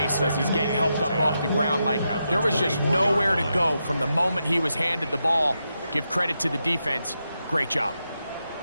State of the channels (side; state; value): both; inverted; correlation -0.86